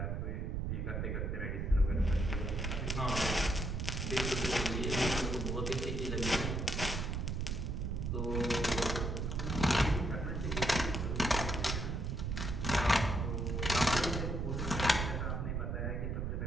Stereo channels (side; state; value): right; noise; rumble, 1 dB below the sound